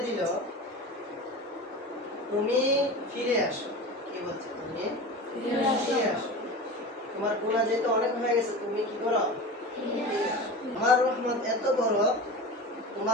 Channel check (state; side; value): normal; both; correlation 0.31